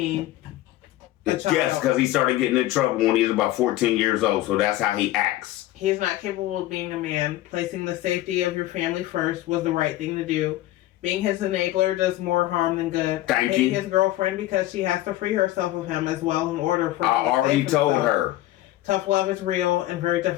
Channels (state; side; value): quieter; right; 15.6 dB